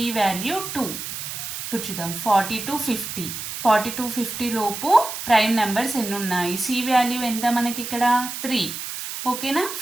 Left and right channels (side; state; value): right; noise; hiss, 7 dB below the sound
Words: వాల్యూ 2. ఇప్పుడు చూద్దాం 40 to 50. 40 to 50 లోపు ప్రైమ్ నెంబర్స్ ఎన్ని ఉన్నాయి? సి వాల్యూ ఎంత మనకి? ఇక్కడ 3. ఓకేనా?